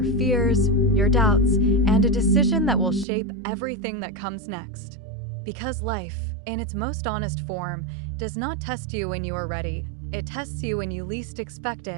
fears, your doubts, and a decision that will shape everything that comes next. Because life, in its most honest form, does not test you when you are ready. It tests you when you least expect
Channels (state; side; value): drops out; left; at 3.1 s